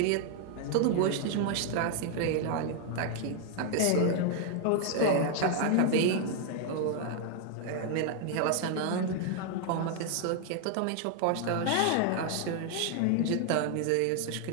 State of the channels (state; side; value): different; both; correlation 0.00